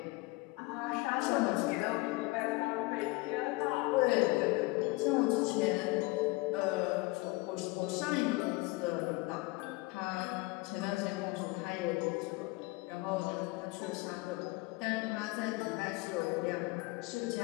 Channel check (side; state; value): right; quieter; 23.6 dB